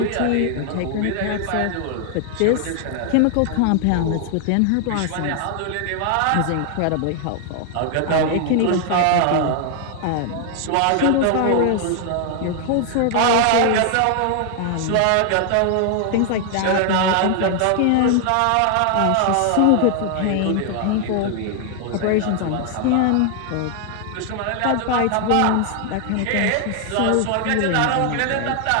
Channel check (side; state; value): both; different; correlation 0.00